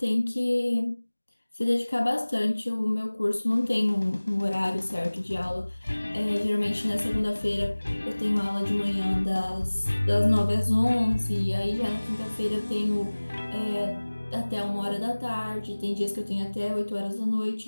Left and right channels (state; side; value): inverted; both; correlation -1.00